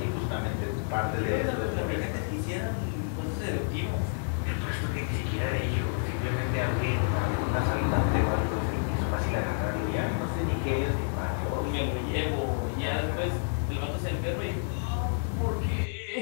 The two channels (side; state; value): right; silent; 58 dB below the other